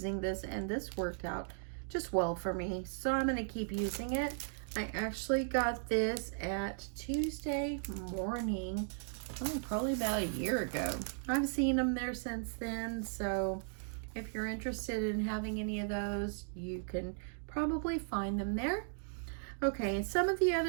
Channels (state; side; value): silent; left; digital silence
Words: this, and this worked out just well for me, so I'm going to keep using it. I actually got this at Tuesday morning, probably about a year ago. I've seen them there since then, so if you're interested in having any of those, you can probably find them there. Okay, and some of the